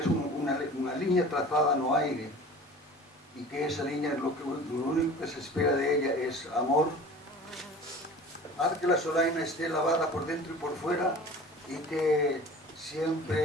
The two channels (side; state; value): both; normal; correlation 0.41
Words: unha liña trazada no aire, y que esa línea lo único que se espera de ella es amor. Haz que la Solaina esté lavada por dentro y por fuera y que